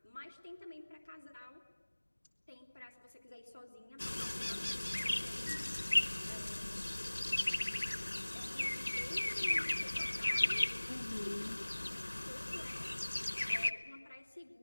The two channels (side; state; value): both; inverted; correlation -1.00